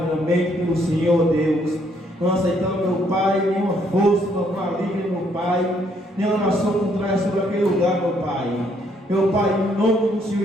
pelo Senhor, ó Deus. Não aceitamos, meu Pai, nenhuma força, meu maligna, meu Pai, nenhuma nação contrária sobre aquele lugar, meu Pai. Meu Pai, em nome do Senhor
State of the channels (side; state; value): both; normal; correlation 0.69